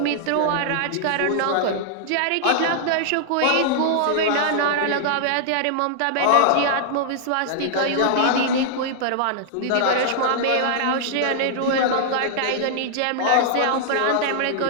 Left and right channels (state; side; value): different; both; correlation -0.01